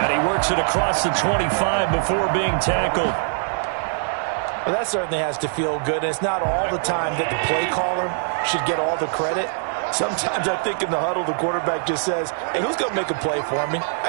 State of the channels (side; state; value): left; silent; 64 dB below the other